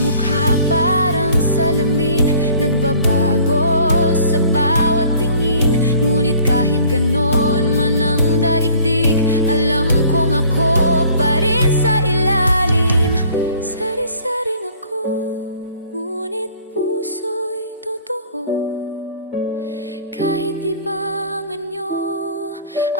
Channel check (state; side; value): inverted; both; correlation -0.53